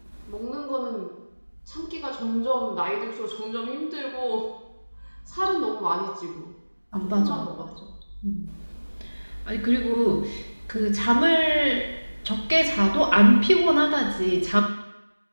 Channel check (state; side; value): inverted; both; correlation -1.00